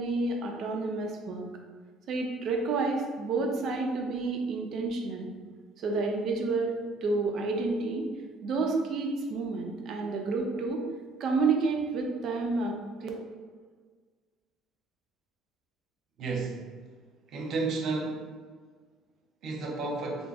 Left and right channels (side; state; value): left; quieter; 3.2 dB